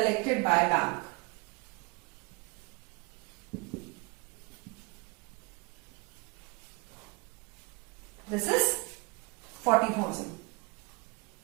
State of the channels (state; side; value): quieter; left; 27.6 dB